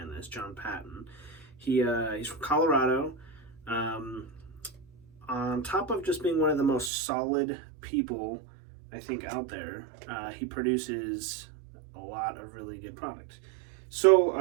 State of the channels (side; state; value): left; drops out; at 6.9 s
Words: this, John Patton, he's from Colorado. On top of just being one of the most solid people, I think, out there, he produces a lot of really good product. So